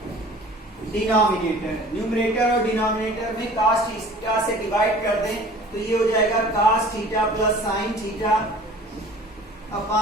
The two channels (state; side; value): normal; both; correlation 0.46